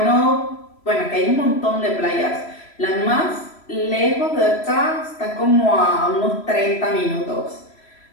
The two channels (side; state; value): right; late; 3.0 ms